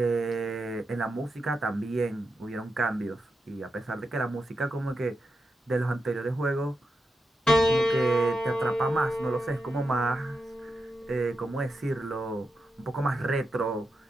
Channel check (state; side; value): normal; both; correlation 0.87